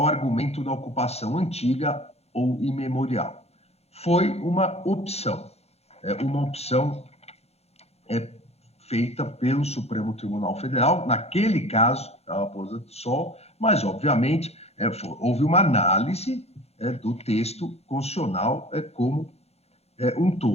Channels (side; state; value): right; late; 0.30 ms